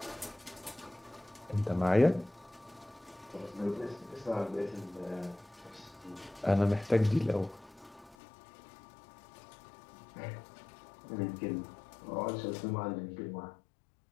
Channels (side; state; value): right; drops out; at 8.2 s